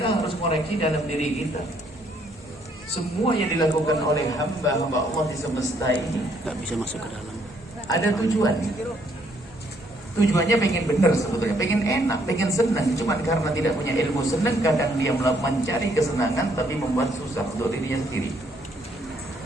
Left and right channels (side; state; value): both; normal; correlation 0.69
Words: harus koreksi dalam diri kita. Semua yang dilakukan oleh hamba-hamba Allah di semesta ini Gak bisa masuk ke dalam. ada tujuan. Tujuannya pengen benar sebetulnya, pengen enak, pengen senang. Cuman karena tidak punya ilmu senang, kadang dia mencari kesenangan tapi membuat susah untuk dirinya sendiri.